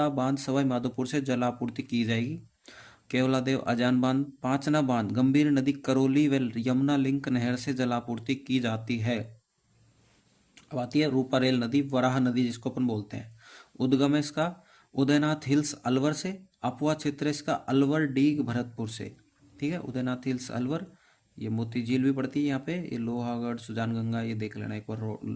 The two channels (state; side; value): identical; both; correlation 1.00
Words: बांध सवाई माधोपुर से जल आपूर्ति की जाएगी। केवलादेव अजान बांध, पांचना बांध गंभीर नदी, करौली व यमुना लिंक नहर से जलापूर्ति की जाती है। अब आती है रूपारेल नदी, वराह नदी जिसको अपन बोलते हैं। उद्गम है इसका उदयनाथ हिल्स अलवर से। अपवा क्षेत्र इसका अलवर, डीग, भरतपुर से। ठीक है, उदयनाथ हिल्स अलवर। ये मोती झील भी पड़ती है यहाँ पे, ये लोहागढ़, सुजानगंगा, ये देख लेना एक बार